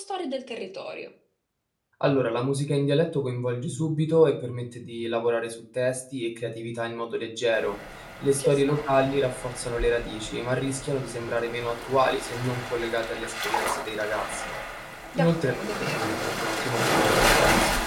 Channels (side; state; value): both; identical; correlation 1.00